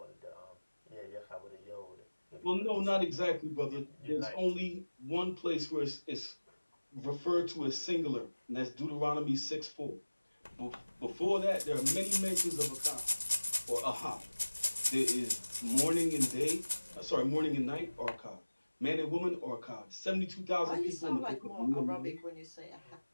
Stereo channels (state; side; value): inverted; both; correlation -1.00